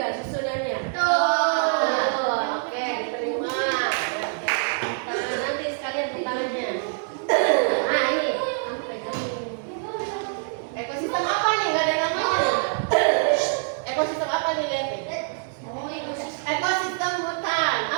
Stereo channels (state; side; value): silent; left; digital silence